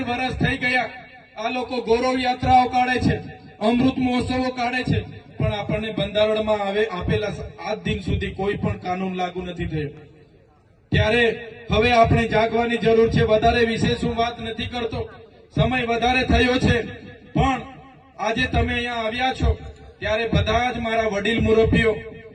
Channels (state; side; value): identical; both; correlation 1.00